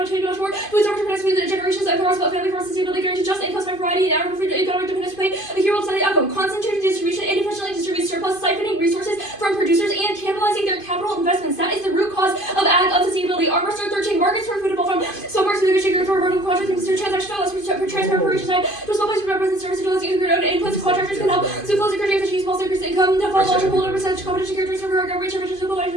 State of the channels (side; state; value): right; late; 2.5 ms